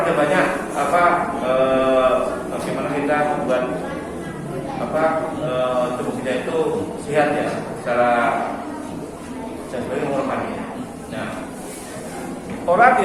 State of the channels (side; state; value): both; identical; correlation 1.00